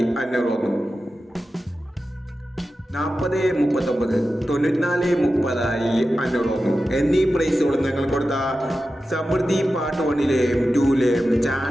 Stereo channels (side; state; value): both; normal; correlation 0.93